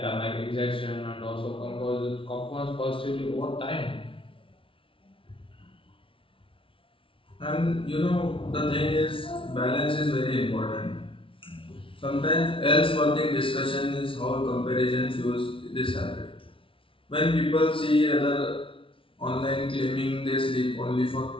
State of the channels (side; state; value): right; late; 0.25 ms